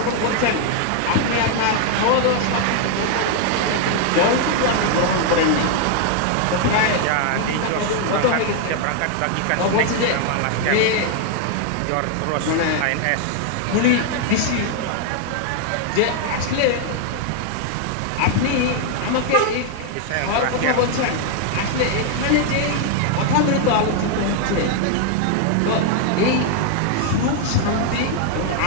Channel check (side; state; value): both; different; correlation 0.00